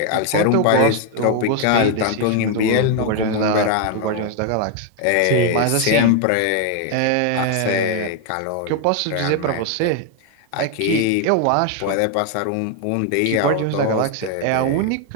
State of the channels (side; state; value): both; different; correlation 0.01